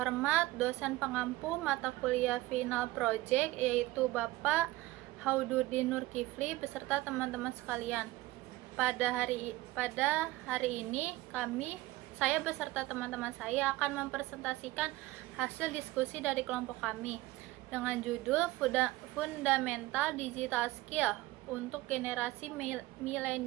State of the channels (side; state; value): left; quieter; 18.8 dB